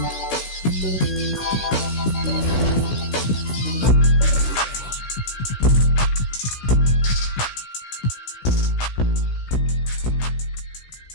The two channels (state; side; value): late; right; 16 ms